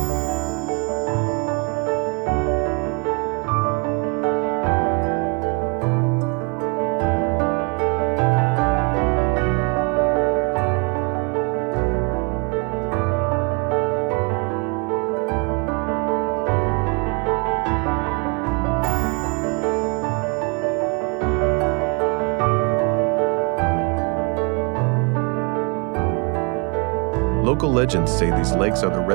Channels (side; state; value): left; quieter; 33.0 dB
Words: Local legends say these lakes are the